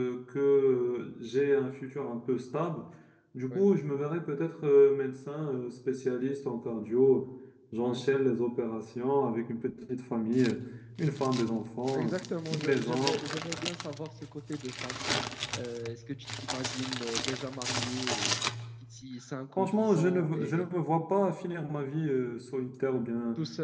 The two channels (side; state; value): both; identical; correlation 1.00